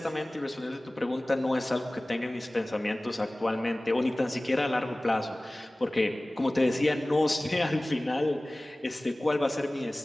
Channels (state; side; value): normal; both; correlation 0.98